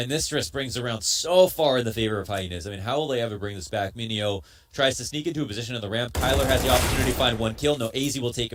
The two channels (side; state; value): both; identical; correlation 1.00